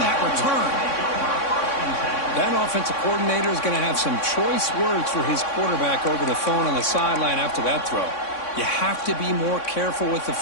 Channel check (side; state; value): right; late; 3.6 ms